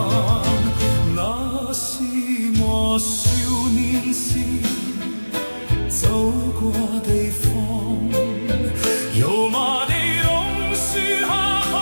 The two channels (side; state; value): both; inverted; correlation -1.00